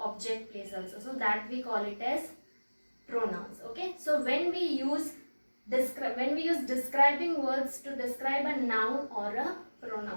place also. So that we call it as pronouns, okay. So when we use describing words to describe a noun or a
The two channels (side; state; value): both; inverted; correlation -1.00